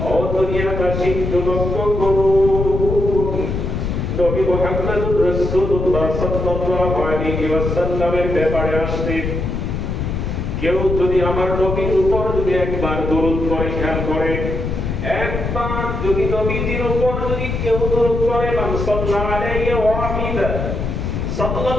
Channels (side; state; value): left; noise; rumble, 3 dB below the sound